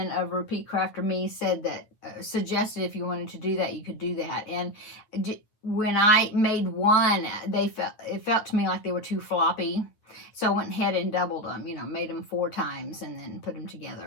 of Repeat Crafter Me said that, suggested if you wanted to do that, you could do that. And when I made one, it felt to me like they were too floppy. So I went ahead and doubled them, you know, made them 4 times and then put them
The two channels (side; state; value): right; late; 9.3 ms